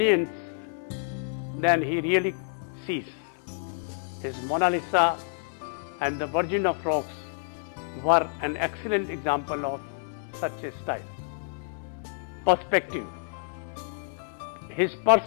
than he really sees. His Mona Lisa and the Virgin of Rocks were an excellent example of such a style. Perspective. His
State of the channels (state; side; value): silent; right; 59 dB below the other